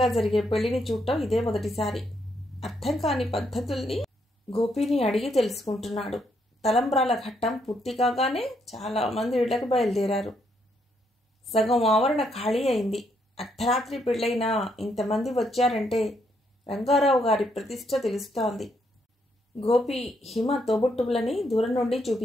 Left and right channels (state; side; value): normal; both; correlation 0.75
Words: జరిగే పెళ్లిని చూడటం ఇదే మొదటిసారి. అర్థం కాని పద్ధతుల్ని గోపిని అడిగి తెలుసుకుంటున్నాడు. తలంబ్రాల ఘట్టం పూర్తి కాగానే చాలా మంది ఇళ్లకు బయలుదేరారు. సగం ఆవరణ ఖాళీ అయింది. అర్ధరాత్రి పెళ్ళైనా ఇంతమంది వచ్చారంటే రంగారావు గారి ప్రతిష్ట తెలుస్తోంది. గోపి హిమ తోబుట్టువులని దూరం నుండి